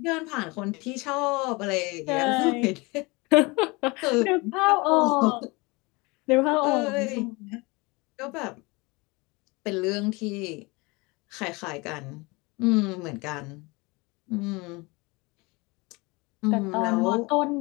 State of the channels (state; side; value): quieter; right; 25.6 dB